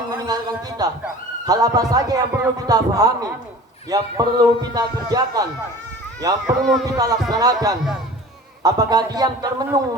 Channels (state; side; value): normal; both; correlation 0.42